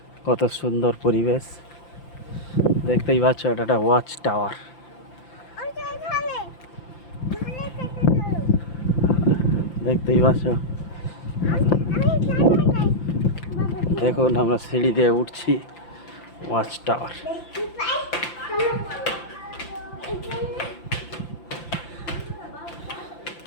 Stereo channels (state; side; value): late; right; 5.8 ms